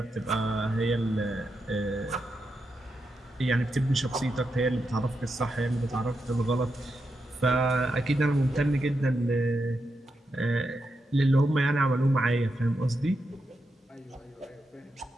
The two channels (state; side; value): normal; both; correlation 0.86